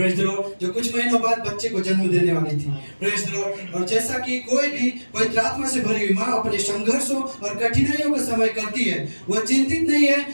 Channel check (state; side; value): inverted; both; correlation -1.00